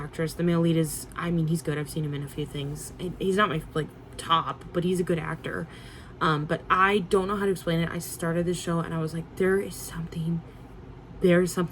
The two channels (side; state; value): both; identical; correlation 1.00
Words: The male lead is, he's good. I've seen him in a few things. He's not my, like, top, but he's a good actor. But I don't know how to explain it. I started this show and I was like, there's something